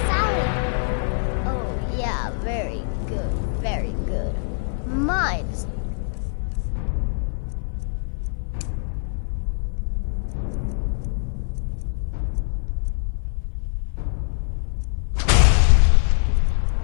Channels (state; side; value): silent; right; 57 dB below the other